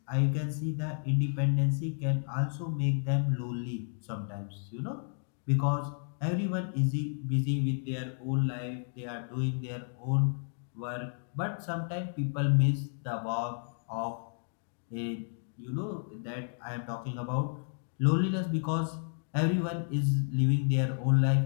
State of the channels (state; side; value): silent; right; digital silence